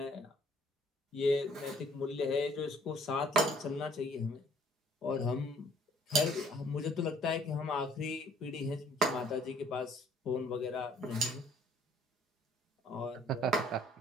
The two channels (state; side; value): normal; both; correlation 0.59